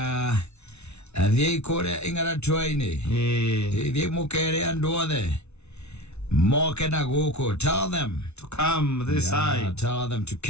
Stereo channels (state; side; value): late; right; 0.81 ms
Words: athie kore ingara twaini thie mukere andu othe moke na guku. Tell them to come this side. Tell them to